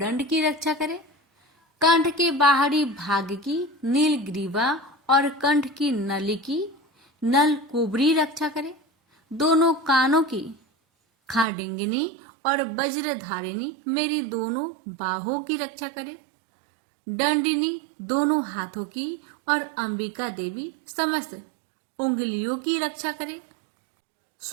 की रक्षा करे। कंठ के बाहरी भाग की नीलग्रीवा और कंठ की नली की नल कुबरी रक्षा करे। दोनों कानों की खाडिंगिनी और वज्रधारिणी मेरी दोनों बाहों की रक्षा करे। दंडिनी दोनों हाथों की और अंबिका देवी समस्त उंगलियों की रक्षा करे।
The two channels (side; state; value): left; drops out; at 11.5 s